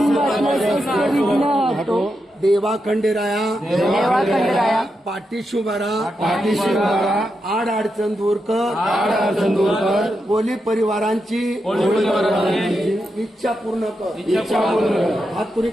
शस्त्र विघ्न हटो देवा खंडेराया देवा खंडेराया पाठीशी उभारा आड अडचण दूर कर कोली परिवारांची इच्छा पूर्ण कर. हात पुरी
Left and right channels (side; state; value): both; normal; correlation 0.86